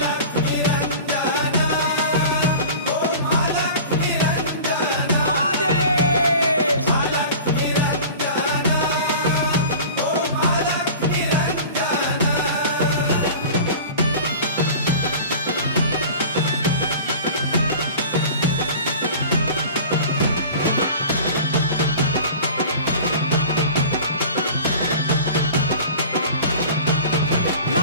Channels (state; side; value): inverted; both; correlation -0.39